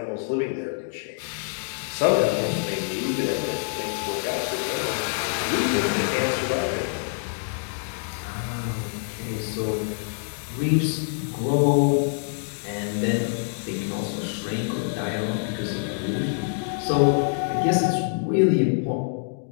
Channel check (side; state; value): right; silent; digital silence